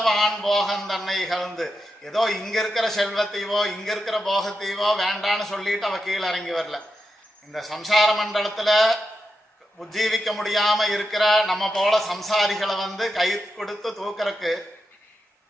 போகந்தன்னை இகழ்ந்து. ஏதோ இங்க இருக்கிற செல்வத்தையோ இங்க இருக்கிற போகத்தையோ வேண்டான்னு சொல்லிட்டு அவ கீழே இறங்கி வரல. இந்த சம்சார மண்டலத்துல உஜ்ஜீவிக்க முடியாம இருக்கிற நம்ம போல சம்சாரிகளை கை கொடுத்து தூக்குறக்கு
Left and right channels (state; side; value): normal; both; correlation 0.87